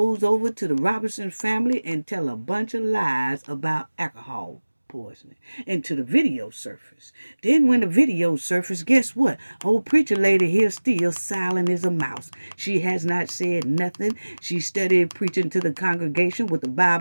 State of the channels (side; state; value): both; inverted; correlation -1.00